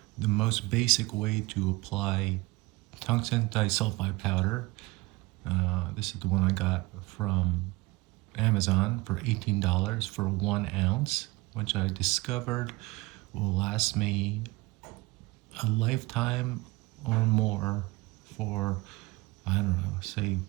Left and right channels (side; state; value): left; quieter; 22.6 dB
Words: the most basic way to apply tungsten disulfide powder. This is the one I got from Amazon for $18 for 1 ounce, which I discovered will last me a lifetime or more for, I don't know, say